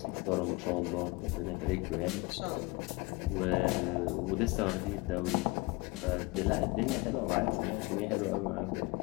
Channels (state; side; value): quieter; right; 24.2 dB